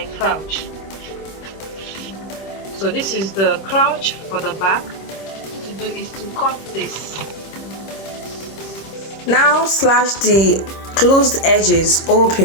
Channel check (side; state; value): right; late; 26 ms